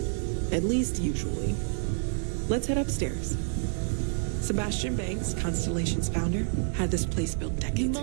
at least usually. Let's head upstairs. Sebastian Banks, Constellation's founder, had this place built decades ago.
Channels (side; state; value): left; silent; 58 dB below the other